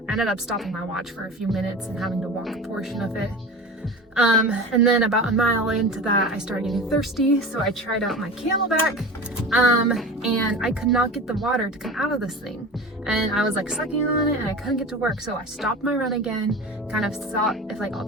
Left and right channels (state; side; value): normal; both; correlation 0.33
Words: I ended up stopping my watch for a few minutes and having to walk a portion of it. And then about a mile into that, I started getting thirsty, so I tried out my Camelback, and I could not get the water to come out of this thing. And I was like sucking on it, and I couldn't get to work, so I stopped my run again, kind of saw if like all